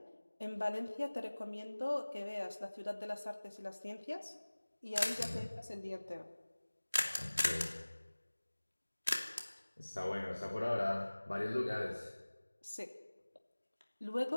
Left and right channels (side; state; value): both; inverted; correlation -1.00